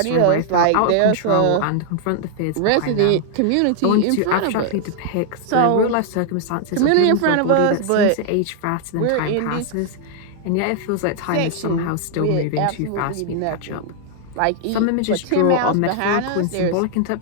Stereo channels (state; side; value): different; both; correlation 0.00